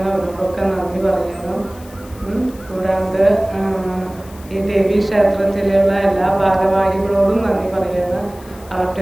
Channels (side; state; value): left; noise; hiss, 23 dB below the sound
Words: അവരോടൊക്കെ നന്ദി പറയുന്നു. കൂടാണ്ട് ഈ ദേവീ ക്ഷേത്രത്തിലുള്ള എല്ലാ ഭാരവാഹികളോടും നന്ദി പറയുന്നു.